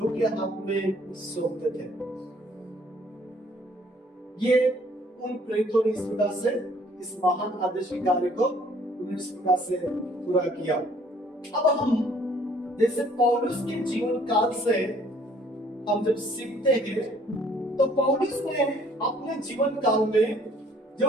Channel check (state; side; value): normal; both; correlation 0.59